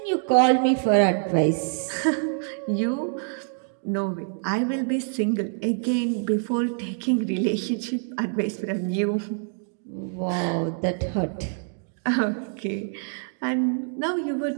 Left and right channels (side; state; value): left; silent; 58 dB below the other